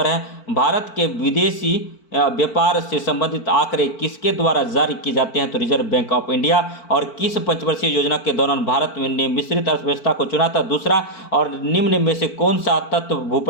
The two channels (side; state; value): right; late; 4.5 ms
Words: है, भारत के विदेशी व्यापार से संबंधित आंकड़े किसके द्वारा जारी किए जाते हैं? तो रिजर्व बैंक ऑफ इंडिया। और किस पंचवर्षीय योजना के दौरान भारत ने मिश्रित अर्थव्यवस्था को चुना था? दूसरा। और निम्न में से कौन सा तत्व